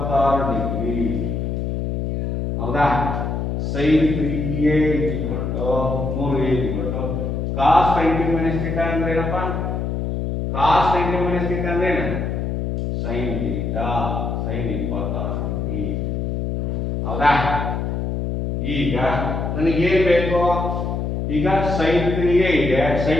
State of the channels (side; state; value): left; noise; hum, 2 dB below the sound